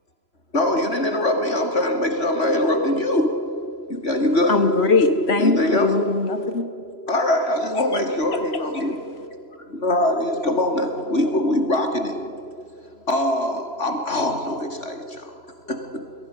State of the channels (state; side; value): late; right; 3.0 ms